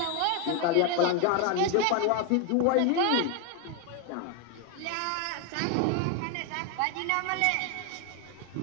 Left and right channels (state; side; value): different; both; correlation 0.01